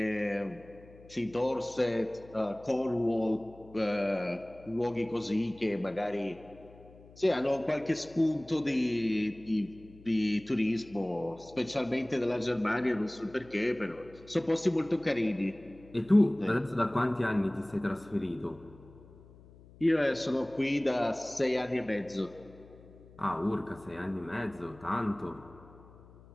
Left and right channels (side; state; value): left; noise; hum, 22 dB below the sound